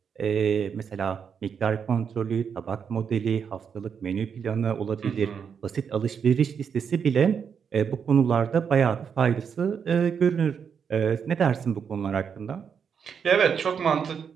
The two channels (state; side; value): quieter; left; 6.9 dB